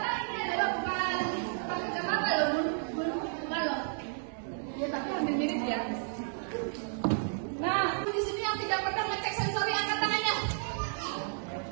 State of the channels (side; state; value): left; silent; digital silence